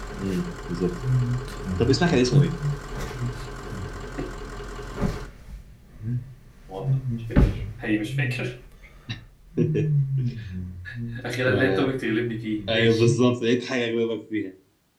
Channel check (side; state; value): both; identical; correlation 1.00